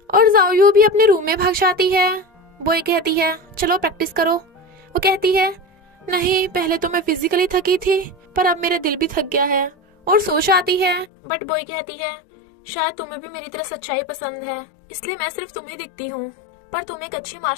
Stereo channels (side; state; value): right; drops out; at 11.1 s